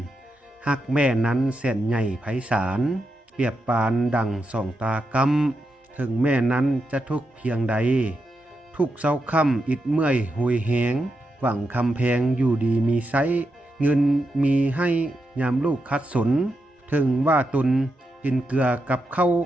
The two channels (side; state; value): both; normal; correlation 0.86